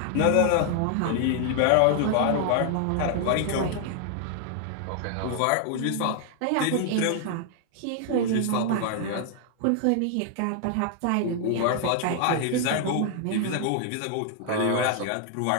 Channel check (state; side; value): different; both; correlation 0.00